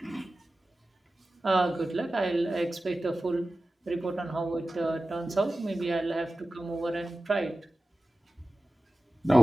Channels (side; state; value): both; normal; correlation 0.95